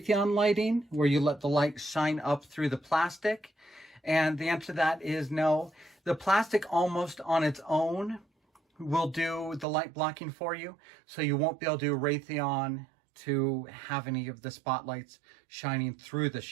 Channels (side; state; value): left; drops out; at 9.7 s